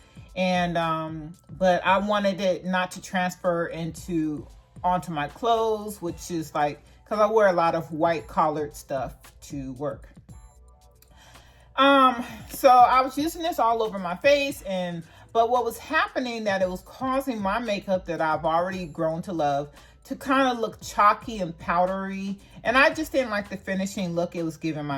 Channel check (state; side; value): identical; both; correlation 1.00